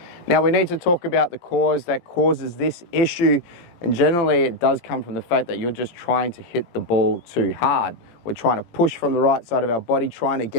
Now, we need to talk about the cause that causes this issue, and generally it does come from the fact that you're just trying to hit the ball too hard. We're trying to push from the right side of our body, trying to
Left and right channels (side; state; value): right; late; 17 ms